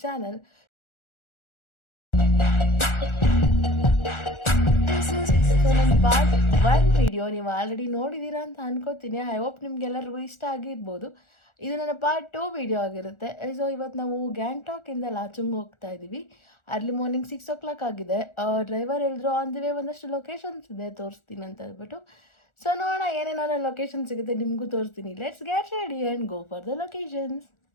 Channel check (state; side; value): late; right; 1.4 ms